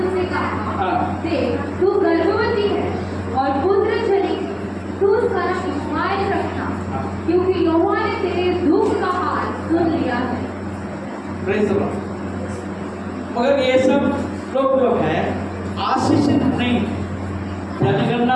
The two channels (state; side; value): identical; both; correlation 1.00